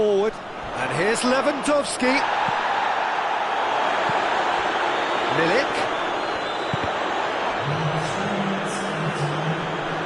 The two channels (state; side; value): identical; both; correlation 1.00